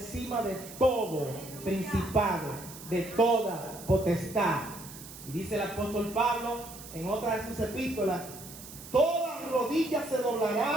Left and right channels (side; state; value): right; noise; hiss, 15 dB below the sound